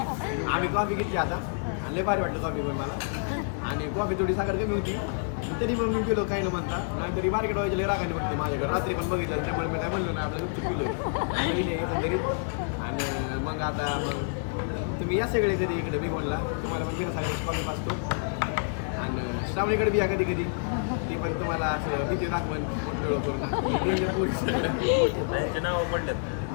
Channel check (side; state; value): right; silent; 59 dB below the other